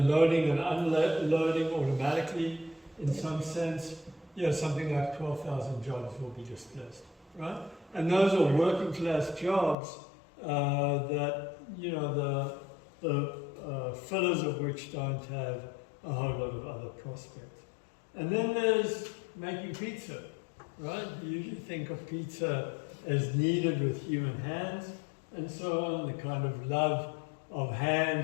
loading and unloading automatically, in some sense, something like 12,000 jobs will be displaced, right? And those are working class jobs that, the fillers of which don't have a whole lot of other prospects. And then there's making pizza, right? You usually think of pizza as kneaded with human hands and so on, the kind of love of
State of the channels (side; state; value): right; drops out; at 9.8 s